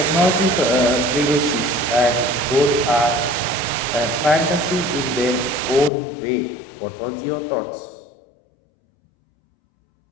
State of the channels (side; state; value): right; drops out; at 5.9 s